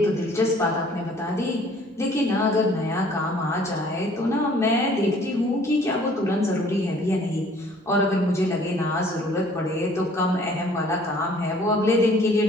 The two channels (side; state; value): both; normal; correlation 0.56